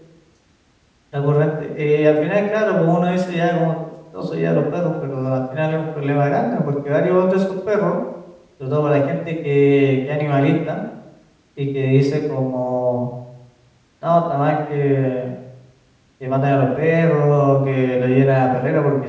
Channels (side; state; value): both; identical; correlation 1.00